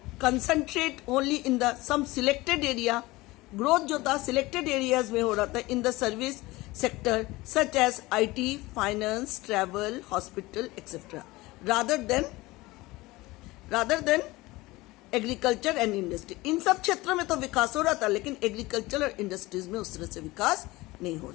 concentrate only in the some selected area. Growth जो था selected areas में हो रहा था in the service sector such as IT, finance, travel, hospital, etc. Rather than agriculture and industry. इन सब क्षेत्रों में तो विकास हो रहा था, लेकिन एग्रीकल्चर और इंडस्ट्रीज में उस तरह से विकास नहीं हो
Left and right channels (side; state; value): right; quieter; 20.4 dB